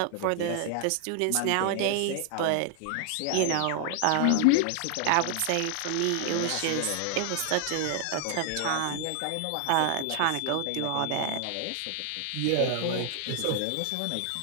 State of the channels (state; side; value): different; both; correlation 0.00